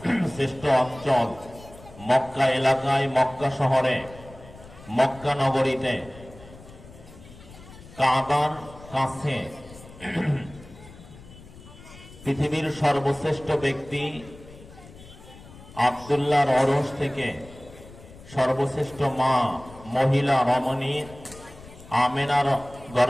শ্রেষ্ঠ অঞ্চল মক্কা এলাকায়, মক্কা শহরে, মক্কা নগরীতে কাবার কাছে পৃথিবীর সর্বশ্রেষ্ঠ ব্যক্তি আব্দুল্লাহর অরশ থেকে সর্বশ্রেষ্ঠ মা মহিলা রমণী আমেনার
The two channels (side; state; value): left; noise; rumble, 19 dB below the sound